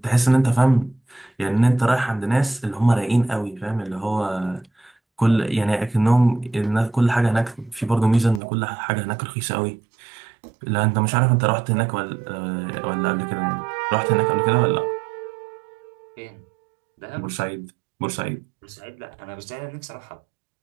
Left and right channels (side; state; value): left; drops out; at 8.4 s